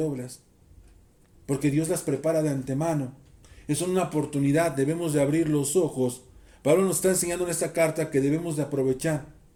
porque Dios las prepara de antemano. Es una oportunidad, debemos de abrir los ojos. Pablo nos está enseñando en esta carta que debemos de aprovechar.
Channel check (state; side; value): identical; both; correlation 1.00